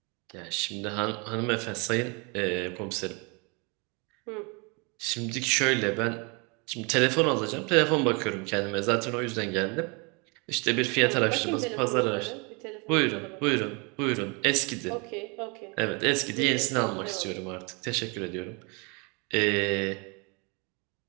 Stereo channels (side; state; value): left; quieter; 31.1 dB